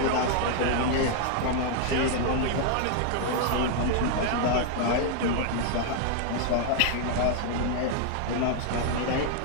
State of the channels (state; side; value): different; both; correlation 0.00